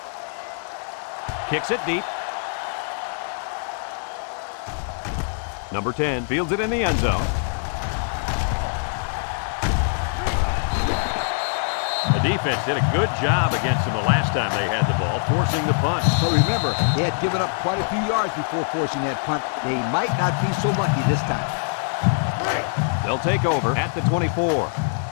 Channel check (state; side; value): silent; right; digital silence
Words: Kicks it deep. Number 10 fields it in the end zone. The defense did a good job against them the last time they had the ball, forcing the punt. But remember, they had given up quite a few yards before forcing that punt. They might not be so lucky this time. They'll take over at the 24.